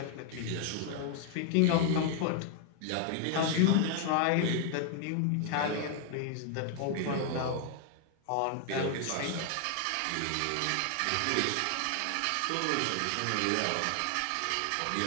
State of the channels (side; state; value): both; different; correlation 0.00